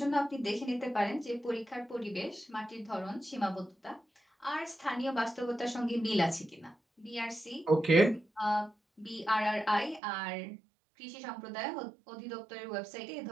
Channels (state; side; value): drops out; left; at 10.0 s